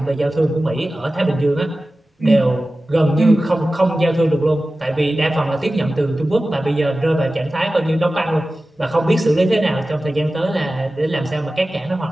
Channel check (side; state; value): both; normal; correlation 0.95